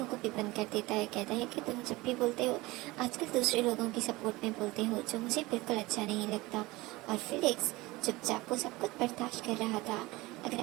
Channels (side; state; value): left; quieter; 21.1 dB